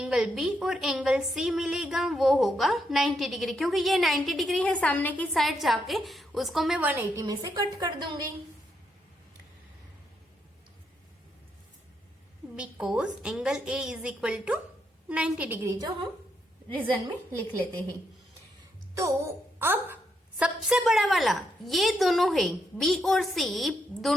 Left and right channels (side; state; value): both; normal; correlation 0.79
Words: बी और एंगल सी मिलेगा, वो होगा 90 डिग्री। क्योंकि ये 90 डिग्री है सामने की साइड जाके, उसको मैं 180 में से कट कर दूंगी। Because angle A is equal to 90 degree, जो हम रीजन में लिख लेते हैं। तो अब सबसे बड़ा वाला ये दोनों है, बी और सी